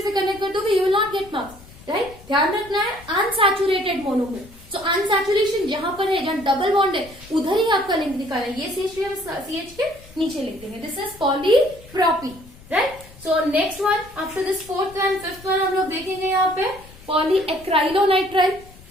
से कनेक्ट कर दोगे, you will not get marks, right. ध्यान रखना है अनसैचुरेटेड मोनोमर। सो अनसैचुरेशन जहां पर है, जहां डबल बॉन्ड है, उधर ही आपका लिंक निकालना है। ये CH3 हम CH के नीचे लिखते हैं, this is polypropene, right. So next one after this fourth and fifth one हम लोग देखेंगे यहाँ पे पॉलीएक्राइलोनाइट्राइल।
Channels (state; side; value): noise; left; rumble, 21 dB below the sound